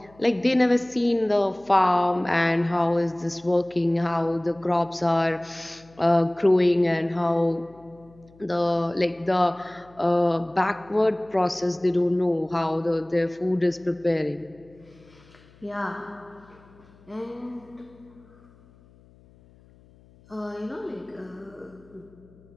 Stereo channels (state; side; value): noise; left; hum, 27 dB below the sound